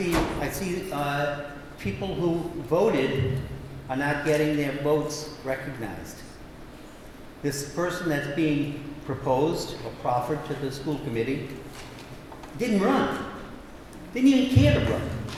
people who voted are not getting their votes recognized. This person that's being proposed or proffered to the school committee didn't run. Didn't even care to run.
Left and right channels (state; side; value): identical; both; correlation 1.00